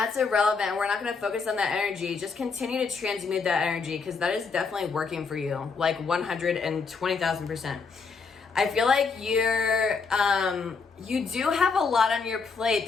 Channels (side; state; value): right; quieter; 5.0 dB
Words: irrelevant. We're not going to focus on that energy. Just continue to transmute that energy, because that is definitely working for you. Like 120,000%. I feel like you do have a lot on your plate.